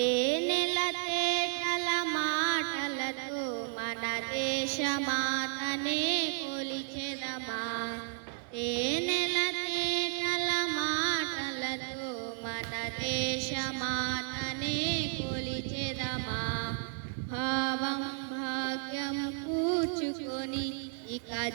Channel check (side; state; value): left; silent; digital silence